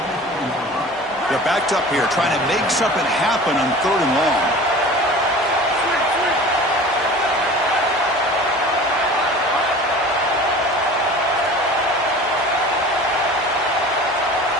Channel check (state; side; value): normal; both; correlation 0.40